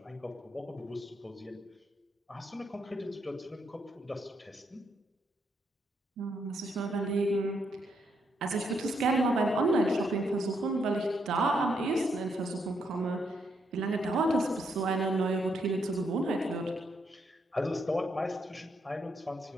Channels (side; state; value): both; normal; correlation 0.77